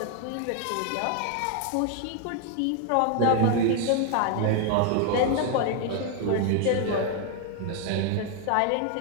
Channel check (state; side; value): different; both; correlation 0.00